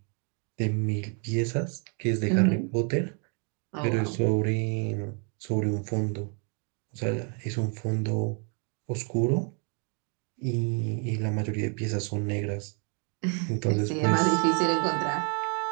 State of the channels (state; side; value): quieter; left; 39.3 dB